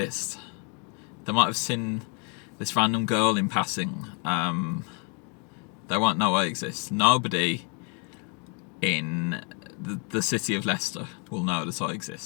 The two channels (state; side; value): quieter; right; 36.3 dB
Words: They might have seen this random girl in passing. They won't know I exist. Nobody in the city of Leicester will know that I